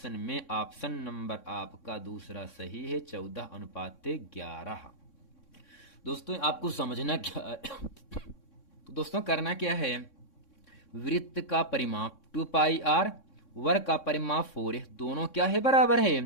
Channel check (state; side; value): late; right; 3.6 ms